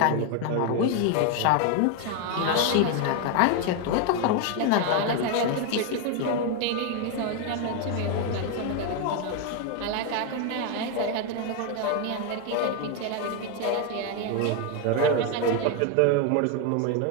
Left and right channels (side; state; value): both; different; correlation 0.01